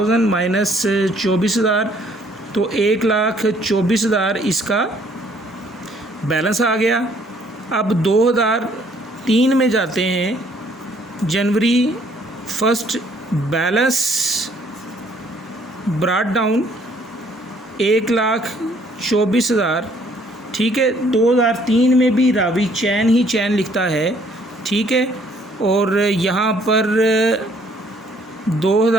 माइनस 24,000, तो 1,24,000 इसका बैलेंस आ गया। अब 2003 में जाते हैं। जनवरी 1 बैलेंस ब्रॉट डाउन 1,24,000, ठीक है। 2003 में भी रावी चैन ही चैन लिखता है, ठीक है। और यहाँ पर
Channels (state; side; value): normal; both; correlation 0.63